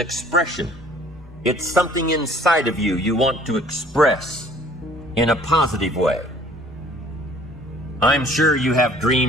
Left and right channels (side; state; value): both; normal; correlation 0.54